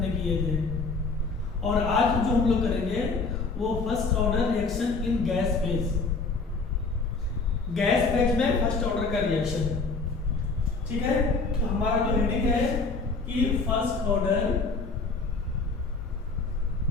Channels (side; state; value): right; quieter; 4.1 dB